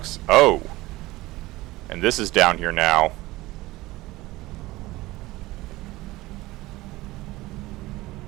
Oh. And this is down here now.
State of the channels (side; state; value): left; quieter; 19.0 dB